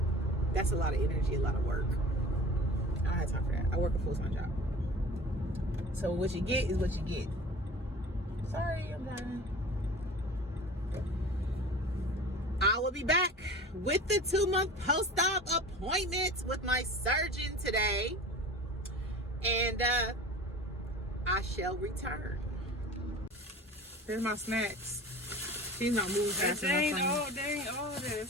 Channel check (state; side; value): normal; both; correlation 0.38